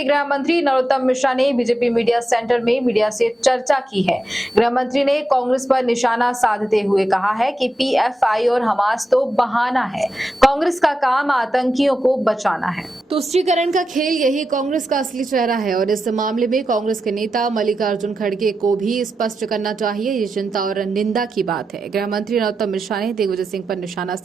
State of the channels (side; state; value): both; normal; correlation 0.89